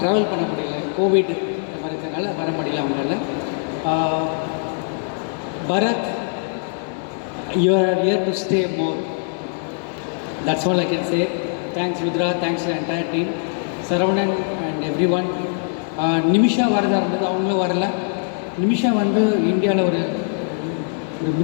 ட்ராவல் பண்ண முடியல, கோவிட் இந்த மாதிரி இருக்கிறனால வர முடியல அவங்களால. Bharath, you are here to stay more. That's all I can say. Thanks Rudra, thanks entire team, Saravanan and everyone. Nimisha வரதா இருந்தது, அவங்களும் வரல. நிமிஷா வந்து இந்தியாவில் ஒரு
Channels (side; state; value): right; silent; 64 dB below the other